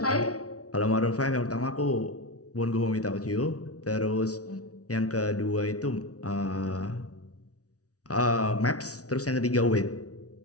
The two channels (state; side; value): late; right; 0.67 ms